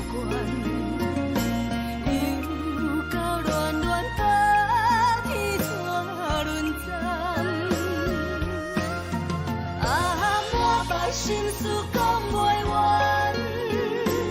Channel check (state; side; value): identical; both; correlation 1.00